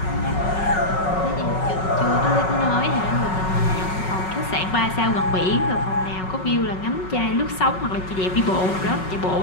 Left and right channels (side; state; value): right; late; 5.4 ms